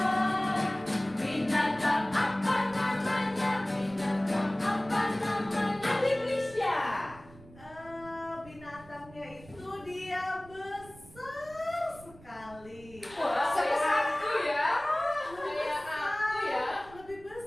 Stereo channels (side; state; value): right; noise; rumble, 21 dB below the sound